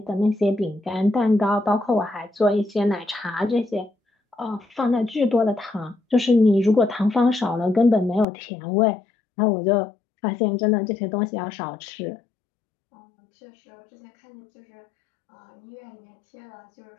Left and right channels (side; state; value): right; drops out; at 8.2 s